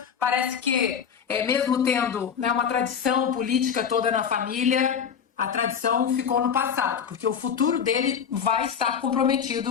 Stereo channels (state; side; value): quieter; right; 7.4 dB